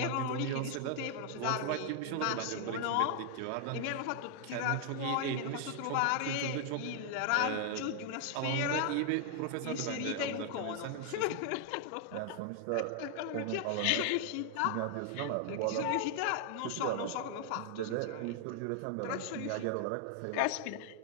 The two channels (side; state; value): both; different; correlation 0.00